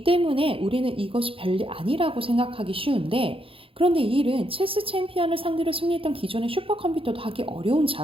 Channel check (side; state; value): left; late; 0.27 ms